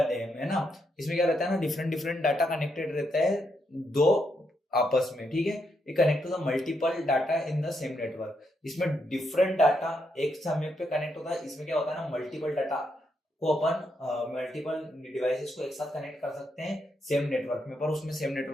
them, है ना। इसमें क्या रहता है ना, डिफरेंट डिफरेंट डाटा कनेक्टेड रहता है दो आपस में, ठीक है। ये connect to the multiple data in the same network. इसमें डिफरेंट डाटा एक समय पे कनेक्ट होता है। इसमें क्या होता है ना, मल्टीपल डाटा को अपन मल्टीपल डिवाइसेस को एक साथ कनेक्ट कर सकते हैं सेम नेटवर्क में, पर उसमें सेम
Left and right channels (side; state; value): both; normal; correlation 0.79